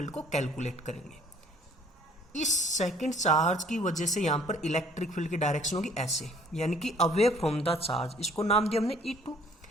को कैलकुलेट करेंगे। इस सेकंड चार्ज की वजह से यहां पर इलेक्ट्रिक फील्ड की डायरेक्शन होगी ऐसे, यानी कि अवे फ्रॉम द चार्ज, इसको नाम दिया हमने E2।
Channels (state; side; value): normal; both; correlation 0.57